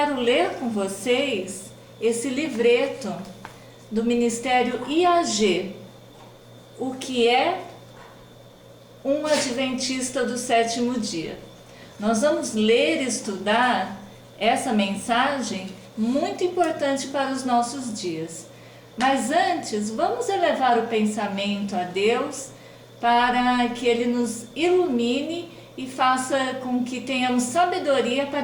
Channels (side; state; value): both; identical; correlation 1.00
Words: ler com vocês esse livreto do Ministério IAG, o que é um Adventista do Sétimo Dia. Nós vamos ler e estudar essa mensagem muito importante para os nossos dias. Mas antes, vamos elevar o pensamento a Deus para que Ele nos ilumine e faça com que tenhamos sabedoria